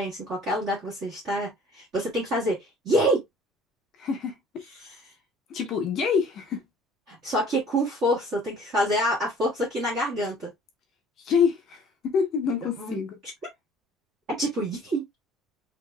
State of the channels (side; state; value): both; normal; correlation 0.52